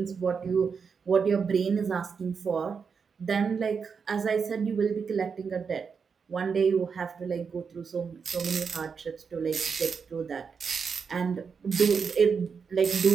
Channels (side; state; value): left; quieter; 5.9 dB